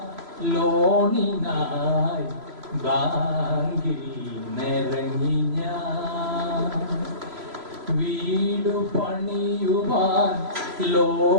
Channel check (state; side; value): late; left; 3.0 ms